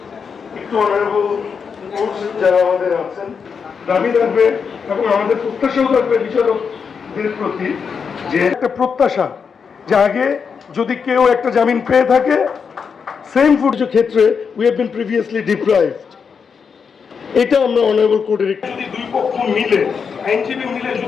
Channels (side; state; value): right; quieter; 6.1 dB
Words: একটু অনারেবল যারা আমাদের আছেন দাবি থাকবে এবং আমাদের প্রত্যাশাও থাকবে বিচারকদের প্রতি, যে একটা প্রত্যাশা যে আগে যদি কেউ একটা জামিন পেয়ে থাকে, সেম ফুডজ ক্ষেত্রে we have been previously deprived, এটা আমরা অনারেবল কোর্টের যদি দুই পক্ষ মিলে আইনজীবী মিলে